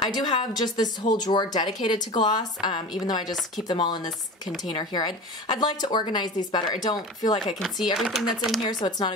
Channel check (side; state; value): both; normal; correlation 0.33